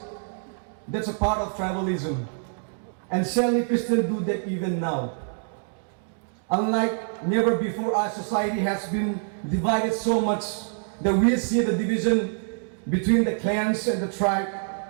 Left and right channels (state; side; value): silent; left; digital silence